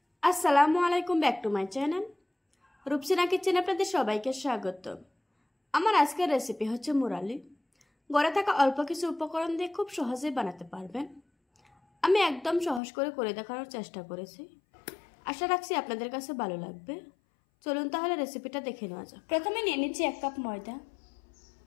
আসসালামু আলাইকুম, back to my channel Rupsina kitchen. আপনাদের সবাইকে স্বাগত। আমার আজকের রেসিপি হচ্ছে মুরালি। ঘরে থাকা অল্প কিছু উপকরণ দিয়ে খুব সহজেই বানাতে পারবেন। আমি একদম সহজ করে দেখানোর চেষ্টা করেছি। আশা রাখছি আপনাদের কাছে ভালো লাগবে। চলুন তাহলে রেসিপিটা দেখে নেওয়া যাক। প্রথমে নিয়ে নিচ্ছি 1 কাপ ময়দা,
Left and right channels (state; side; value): drops out; right; at 12.8 s